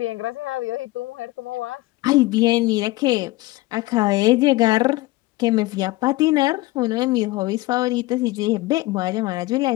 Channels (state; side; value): quieter; right; 19.6 dB